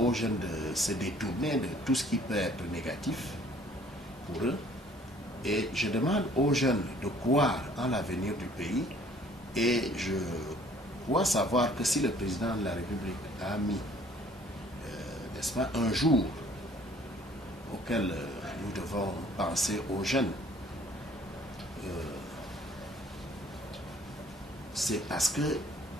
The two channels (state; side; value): normal; both; correlation 0.57